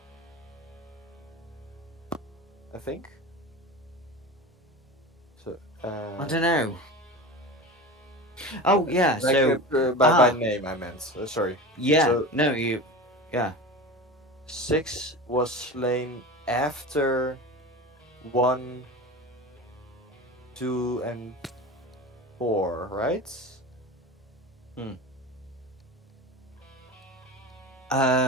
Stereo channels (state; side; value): normal; both; correlation 0.30